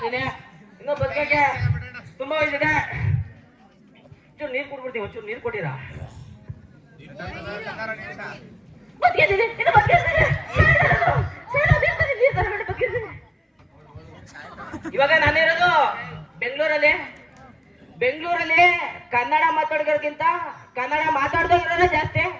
ಇನ್ನೂ ಬದುಕಕ್ಕೆ ತುಂಬಾ ವಯಸ್ಸಿದೆ ಒಂಚೂರು ನೀರು ಕೊಟ್ಬಿಡ್ತೀನಿ ಒಂಚೂರು ನೀರು ಕೊಟ್ಟಿರಾ ಬದುಕಿರ್ತೀನಿ ಇನ್ನು ಬದುಕಿರ್ತೀನಿ ಇವಾಗ ನಾನಿರೋದು ಬೆಂಗಳೂರಲ್ಲಿ ಕನ್ನಡ ಮಾತಾಡೋರ್ಗಿಂತ ಕನ್ನಡ ಮಾತಾಡ್ದೋಗಿರೋದೇ ಜಾಸ್ತಿ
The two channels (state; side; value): identical; both; correlation 1.00